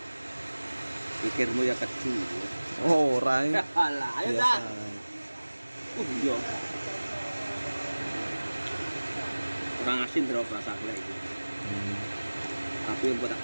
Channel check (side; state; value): both; inverted; correlation -1.00